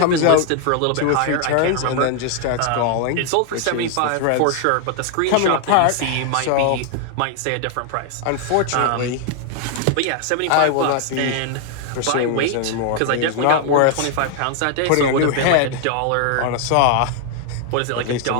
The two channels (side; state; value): both; different; correlation 0.00